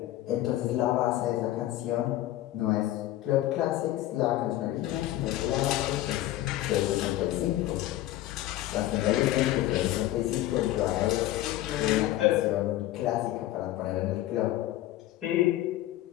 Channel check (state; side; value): quieter; right; 14.9 dB